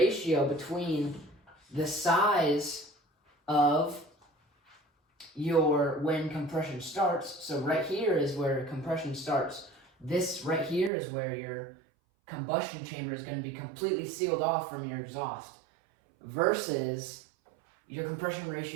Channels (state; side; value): drops out; left; at 10.9 s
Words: between the size of when compression starts. So right here is where compression starts. This right here is where your combustion chamber is going to be completely sealed off from your exhaust, versus your compression